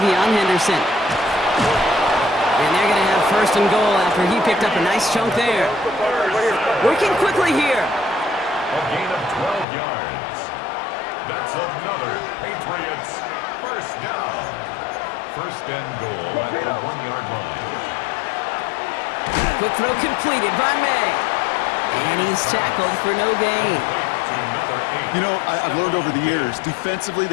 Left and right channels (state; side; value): drops out; right; at 9.7 s